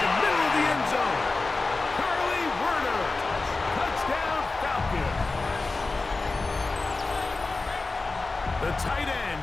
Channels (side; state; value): right; quieter; 3.6 dB